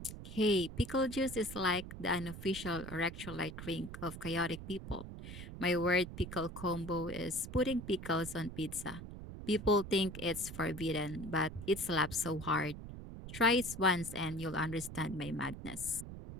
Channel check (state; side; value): noise; right; rumble, 10 dB below the sound